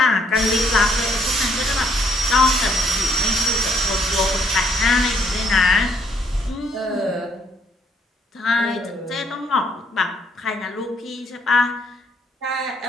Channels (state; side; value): normal; both; correlation 0.68